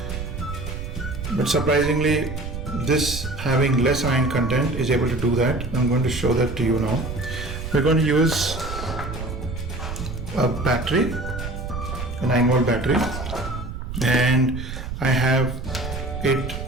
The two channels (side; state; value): right; noise; rumble, 7 dB below the sound